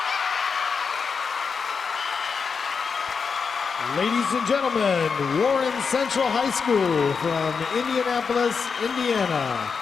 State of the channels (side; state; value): right; quieter; 5.6 dB